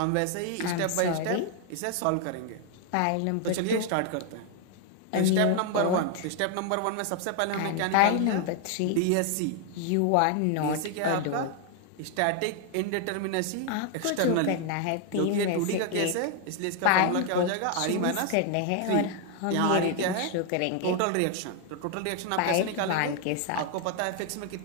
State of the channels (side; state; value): both; different; correlation 0.00